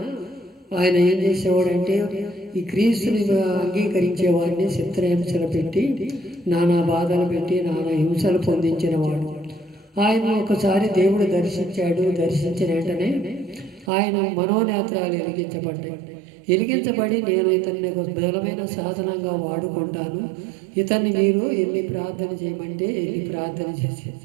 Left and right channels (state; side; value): drops out; left; at 13.9 s